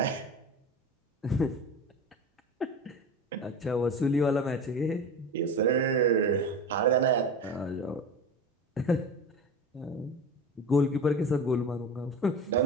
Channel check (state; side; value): normal; both; correlation 0.30